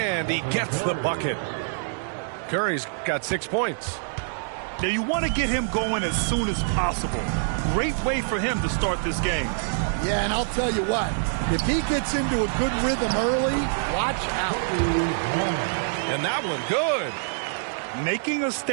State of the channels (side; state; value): left; silent; digital silence